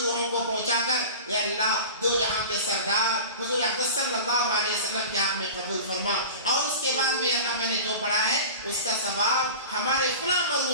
روحوں کو پہنچا کر یا اللہ دو جہاں کے سردار حضور اقدس صلی اللہ علیہ وسلم کے حق میں قبول فرما، اور اس کے بعد میں اللہ میں نے جو پڑھا ہے اس کا ثواب ہمارے فلاں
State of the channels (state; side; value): inverted; both; correlation -0.34